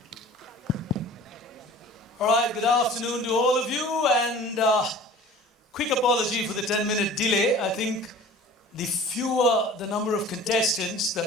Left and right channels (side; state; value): both; normal; correlation 0.44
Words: All right, good afternoon to all of you, and quick apology for the 10-minute delay. I think the fewer the number of contestants,